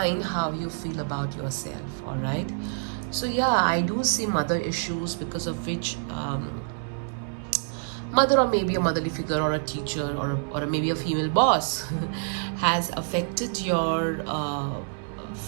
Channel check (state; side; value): silent; left; digital silence